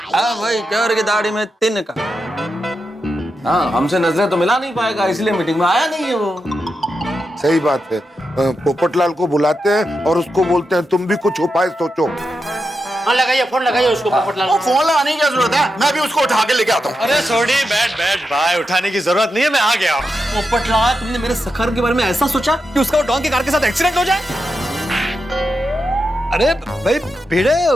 हाँ भाई, चोर की दाढ़ी में तिनका। हाँ, हमसे नजरें तो मिला नहीं पाएगा, इसलिए मीटिंग में आया नहीं है वो। सही बात है। पोपटलाल को बुलाते हैं और उसको बोलते हैं तुम भी कुछ उपाय सोचो। हाँ, लगाइए फोन, लगाइए उसको पोपटलाल। वो फोन लगाने की क्या जरूरत है? मैं भी उसको उठा के लेके आता हूँ। अरे सोडी, बैठ भाई, उठाने की जरूरत नहीं है, मैं आ गया। पोपटलाल, तुमने मेरे सखाराम के बारे में ऐसा सोचा कि उसका डॉन की कार के साथ एक्सीडेंट हो जाए? अरे भाई भिड़े,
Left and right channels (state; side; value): normal; both; correlation 0.87